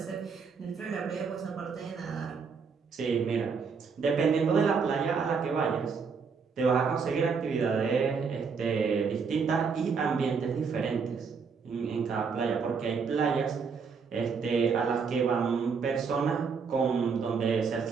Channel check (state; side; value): quieter; left; 5.6 dB